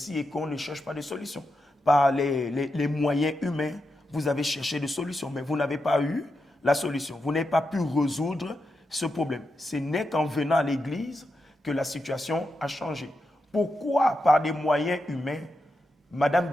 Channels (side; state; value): both; normal; correlation 0.87